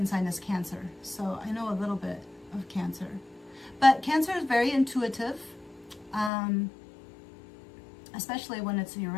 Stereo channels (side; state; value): right; drops out; at 6.3 s